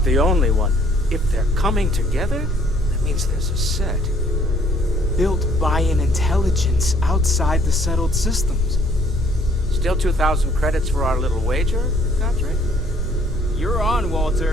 the only one. If they're coming together, that means there's a set. Built by an intelligence outside the settled systems. Still 2,000 credits for our little wager, Country? You're on,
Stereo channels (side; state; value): both; normal; correlation 0.61